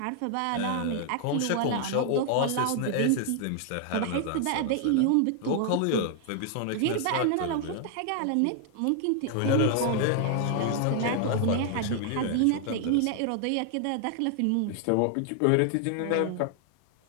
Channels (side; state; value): both; different; correlation 0.00